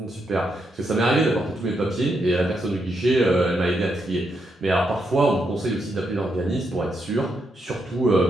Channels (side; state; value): both; normal; correlation 0.81